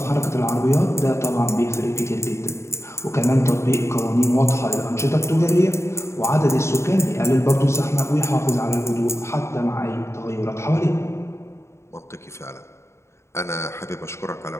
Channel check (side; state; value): right; late; 0.13 ms